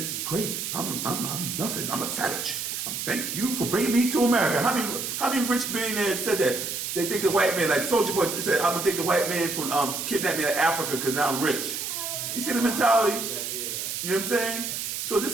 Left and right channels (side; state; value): right; noise; hiss, 4 dB below the sound